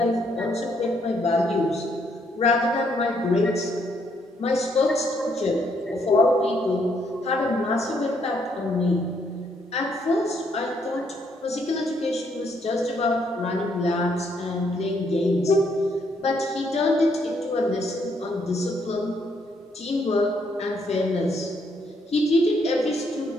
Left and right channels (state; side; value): normal; both; correlation 0.72